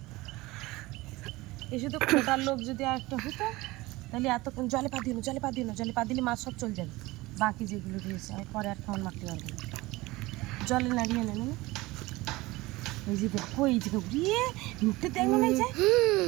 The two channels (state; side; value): quieter; left; 20.6 dB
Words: এই শুধু খোটার লোক যদি আর একটা হতো তাহলে এতক্ষণ জলে পা দিও না, জলে পা দিও না, জলে পা দিলে মাছ সব চলে যাবে, বাকি যেগুলো দিয়েছে আমি পরে আর খাওয়ান মারতে পারবো না, জলে নাড়িয়ে নেবে না। ওই যে দেখো এই যে ঘুরিয়ে ঢুকতে দেখবে না, যায়